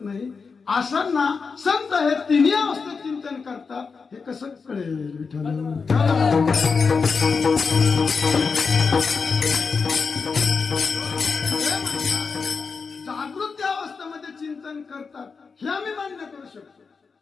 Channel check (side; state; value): right; quieter; 5.0 dB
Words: नाही. असंना संत हे तिन्ही अवस्थेत चिंतन करतात हे कसं कळेल विठ्ठल? जागृती अवस्थेमध्ये चिंतन करतात हे आम्ही मान्य करू शकतो,